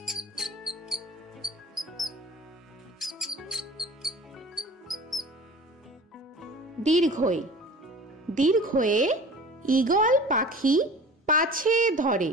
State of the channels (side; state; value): both; normal; correlation 0.41